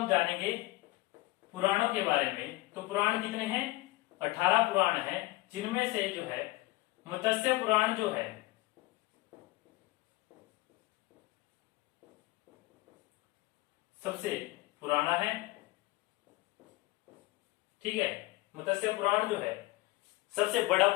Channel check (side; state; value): right; quieter; 20.4 dB